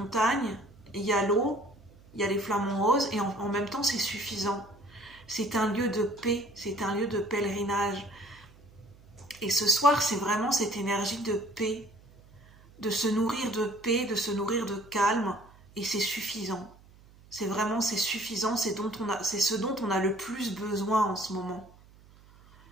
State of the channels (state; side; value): noise; right; hum, 25 dB below the sound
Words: il y a l'eau, il y a les flamants roses et en même temps c'est suffisant. C'est un lieu de paix, c'est un lieu de pèlerinage. Et ce soir c'est vraiment cette énergie de paix, de se nourrir de paix, de se nourrir de calme et c'est suffisant. C'est suffisant, c'est ce dont on a le plus besoin en ce moment.